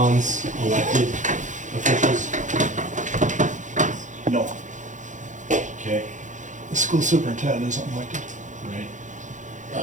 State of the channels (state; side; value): late; left; 0.36 ms